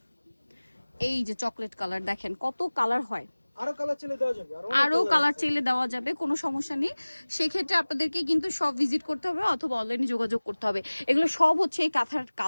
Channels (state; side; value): inverted; both; correlation -1.00